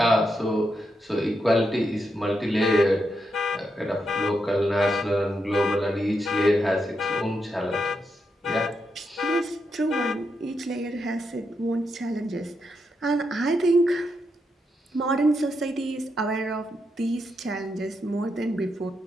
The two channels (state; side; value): normal; both; correlation 0.83